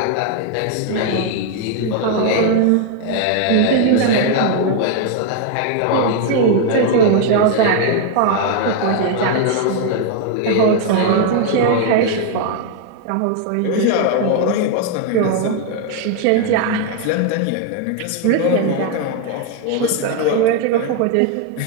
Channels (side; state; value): both; different; correlation 0.00